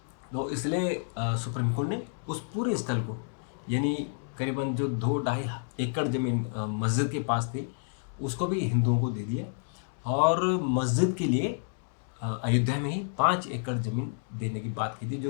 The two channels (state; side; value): silent; right; digital silence